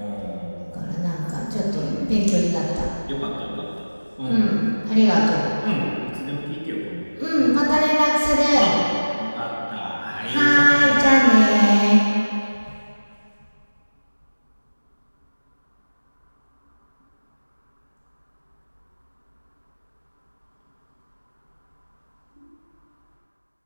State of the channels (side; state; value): both; inverted; correlation -1.00